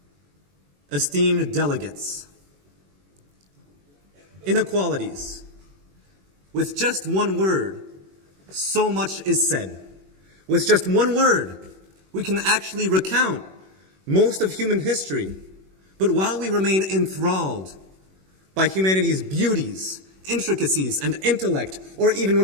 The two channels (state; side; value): late; left; 21 ms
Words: esteemed delegates. Inequalities. With just one word, so much is said. With just one word, we can actually recount most of human history. But while we remain enthralled by humanity's beauties, intricacies, and intellect, or even